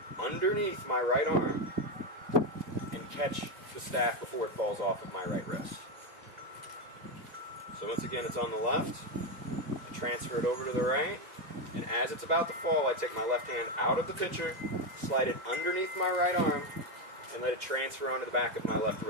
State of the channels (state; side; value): late; left; 2.0 ms